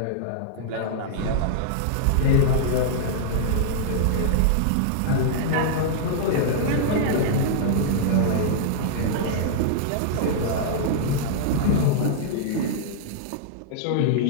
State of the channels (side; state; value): both; different; correlation -0.01